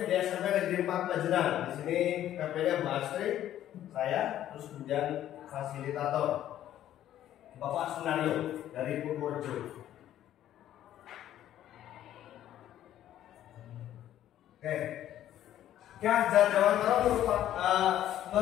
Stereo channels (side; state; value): right; quieter; 12.0 dB